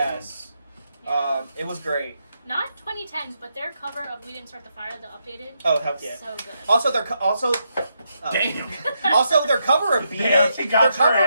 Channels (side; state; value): both; inverted; correlation -0.81